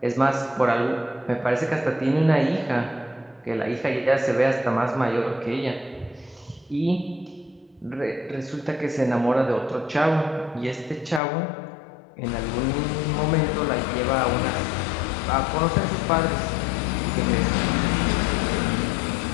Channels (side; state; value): right; drops out; at 11.2 s